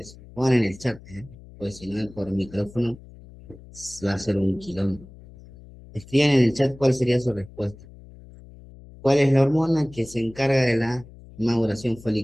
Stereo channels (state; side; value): noise; left; hum, 20 dB below the sound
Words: Pongan en el chat, ¿eh? Pues si no, por micrófono va a ser un quilombo. Escriban en el chat cuál sería su respuesta. ¿Cuál es la hormona que se encarga de la maduración